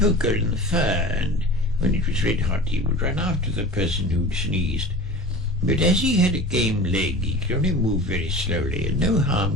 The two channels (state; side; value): normal; both; correlation 0.36